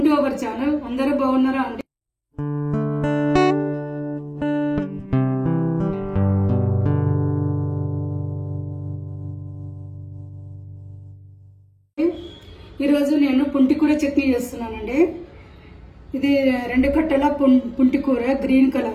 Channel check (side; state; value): both; identical; correlation 1.00